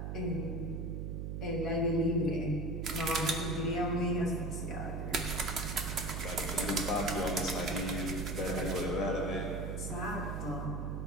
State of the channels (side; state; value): right; noise; hum, 3 dB below the sound